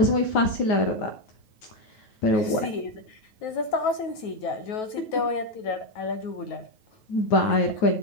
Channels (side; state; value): right; late; 9.3 ms